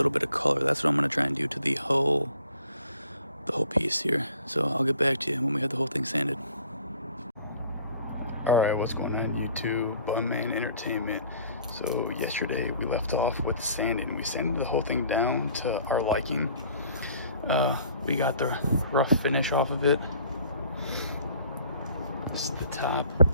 bit of color. That's what I'm gonna try and do to the whole piece here. So I'll get back to you when we have the whole thing sanded. Alright, what's going on YouTube? Bunman Entertainment. So yesterday we left off with sanding. We sanded the whole thing down to our liking. We got the rough finish off of it. This is the top.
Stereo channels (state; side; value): inverted; both; correlation -0.54